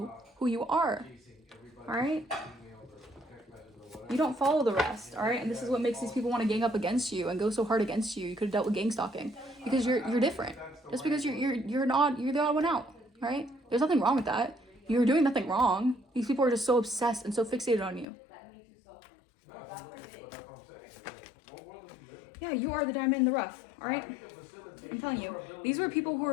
who you are, all right? You don't follow the rest, all right? And this is what makes these people want to gang up against you and go so hard against you. You could have dealt with gang stalking because you're different. Just because you're the odd one out, all right? There's nothing wrong with that. You're doing nothing wrong. These people are just so obsessed and so fixated on you. Yeah, you are the diamond in the rough, all right? I'm telling you, these were people who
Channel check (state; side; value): drops out; right; at 18.1 s